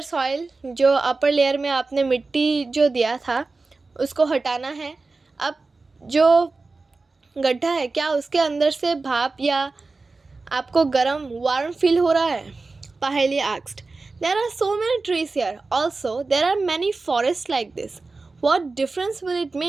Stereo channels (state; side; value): quieter; left; 3.7 dB